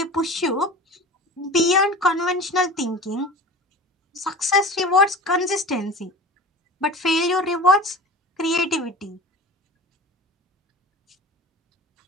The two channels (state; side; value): normal; both; correlation 0.35